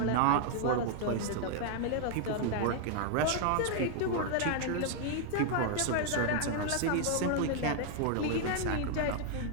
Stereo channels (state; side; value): different; both; correlation 0.00